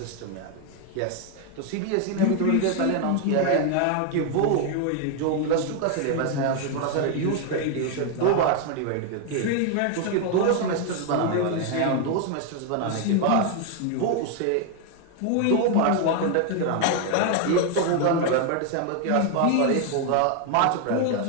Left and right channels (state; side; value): different; both; correlation 0.01